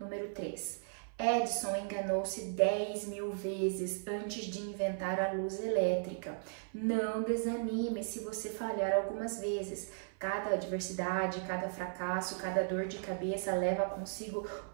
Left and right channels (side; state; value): left; silent; 54 dB below the other